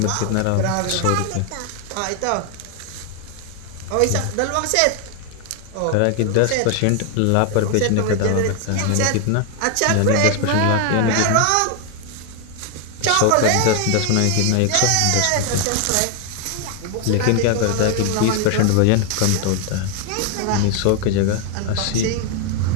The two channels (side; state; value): both; different; correlation 0.00